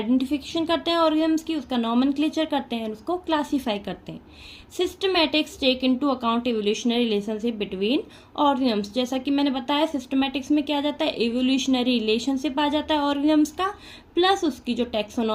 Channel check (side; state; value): both; identical; correlation 1.00